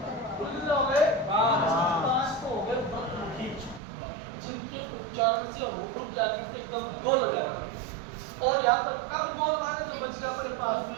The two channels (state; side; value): drops out; left; at 3.8 s